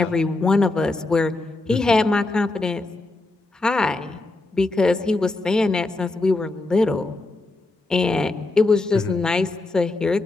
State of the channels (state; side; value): quieter; right; 3.1 dB